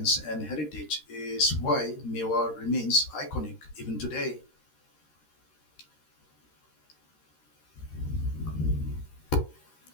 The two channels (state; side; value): late; right; 13 ms